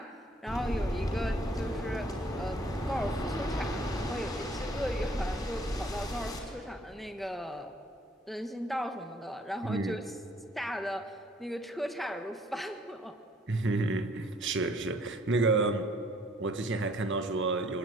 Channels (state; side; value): normal; both; correlation 0.61